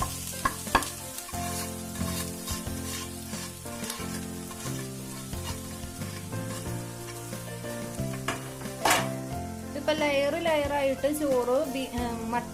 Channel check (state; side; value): identical; both; correlation 1.00